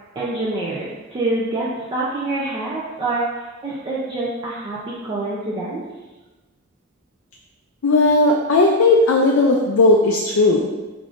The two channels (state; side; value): normal; both; correlation 0.00